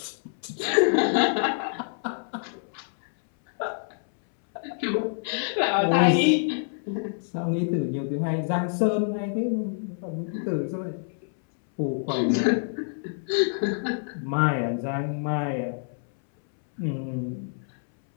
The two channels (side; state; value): right; silent; 60 dB below the other